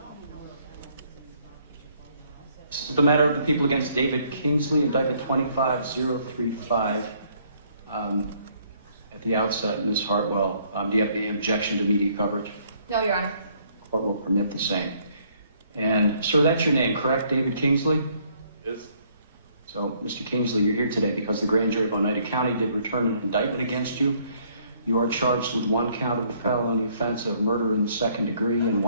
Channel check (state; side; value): inverted; both; correlation -0.65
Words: This is the matter of the people against David Kingsley, indictment 25035. At the outset, Ms. Hartwell, do you have any objection to media coverage? No, Your Honor. The court will permit the same. And, sir, that's your name, correct? David Kingsley? Yes. So, Mr. Kingsley, you're here today because the grand jury of Oneida County did return an indictment against you. You are charged with one count of the felony offense of murder in the second degree and